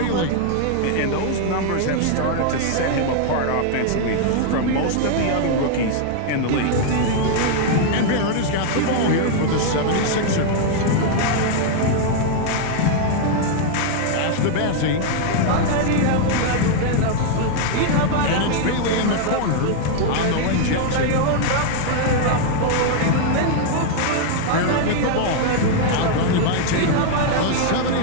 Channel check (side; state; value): both; different; correlation 0.00